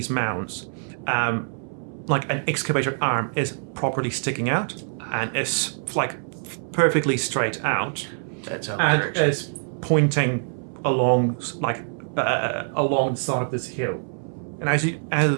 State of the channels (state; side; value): silent; left; 62 dB below the other